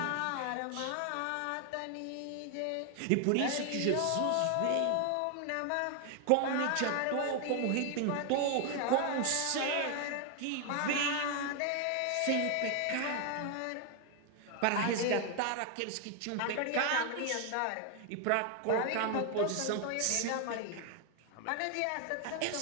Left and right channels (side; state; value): both; different; correlation 0.01